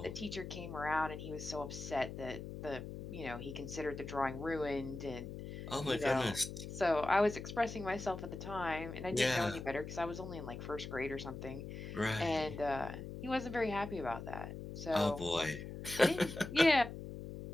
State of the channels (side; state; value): left; noise; hum, 9 dB below the sound